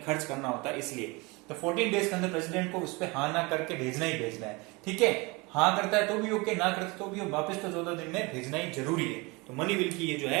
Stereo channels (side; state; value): left; quieter; 26.0 dB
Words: खर्च करना होता है, इसलिए। तो 14 डेज के अंदर प्रेसिडेंट को उस पर हाँ ना करके भेजना ही भेजना है, ठीक है। हाँ करता है तो भी ओके, ना करता तो भी वापस तो 14 दिन में भेजना ही जरूरी है। तो मनी बिल की ये जो